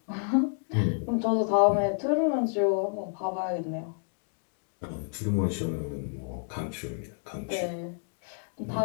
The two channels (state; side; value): silent; right; 58 dB below the other